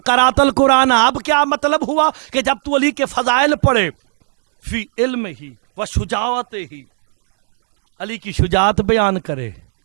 قرأت القرآن، اب کیا مطلب ہوا کہ جب تو علی کے فضائل پڑھے فی علم ہی و شجاعت ہی، علی کی شجاعت بیان کرے،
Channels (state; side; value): silent; left; 68 dB below the other